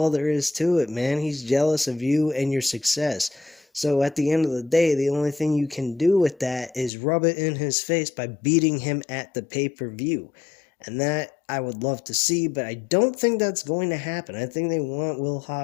there is to it, man. He's jealous of you and your success. So at the end of the day, the only thing you can do with that is rub it in his face by beating him at the pay-per-view. And that I would love to see, but I don't think that's going to happen. I think they want Will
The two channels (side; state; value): right; drops out; at 6.9 s